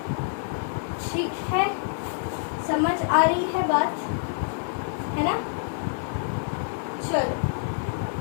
ठीक है, समझ आ रही है बात, है ना। चलो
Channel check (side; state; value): right; silent; 60 dB below the other